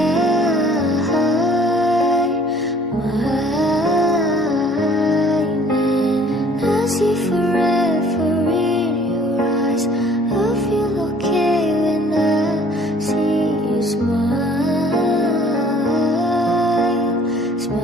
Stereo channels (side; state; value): both; normal; correlation 0.55